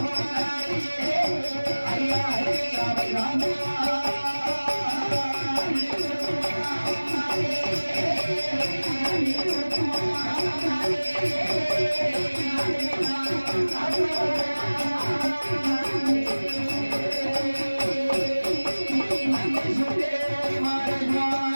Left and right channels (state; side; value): inverted; both; correlation -1.00